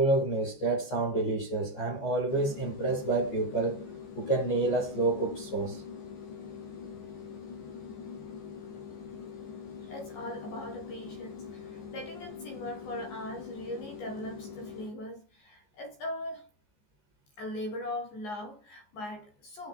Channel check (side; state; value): right; late; 14 ms